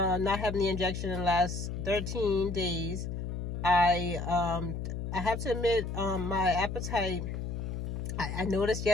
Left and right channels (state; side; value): noise; left; hum, 4 dB below the sound